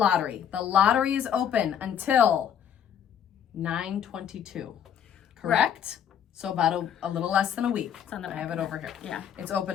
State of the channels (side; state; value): right; quieter; 9.0 dB